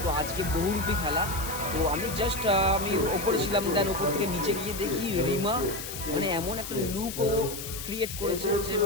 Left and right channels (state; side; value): noise; left; hiss, 8 dB below the sound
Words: তো আজকে বহুরূপী খেলা। তো আমি জাস্ট আমি ওপরে ছিলাম, দেন ওপর থেকে নিচে গিয়ে দেখি রিমা মানে এমন একটা লুক ও ক্রিয়েট করেছে যে